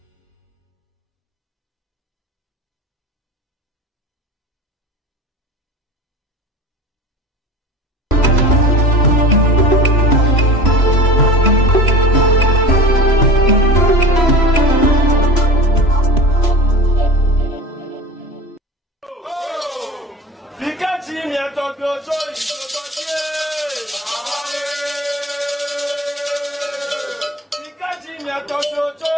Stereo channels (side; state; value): both; normal; correlation 0.36